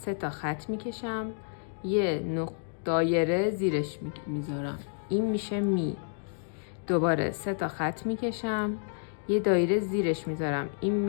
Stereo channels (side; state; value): right; silent; digital silence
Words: تا خط میکشم، یه دایره زیرش میذارم، این میشه می. دوباره 3 تا خط میکشم، یه دایره زیرش میذارم، این